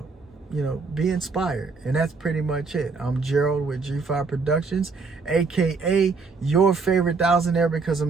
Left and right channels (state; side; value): quieter; left; 4.4 dB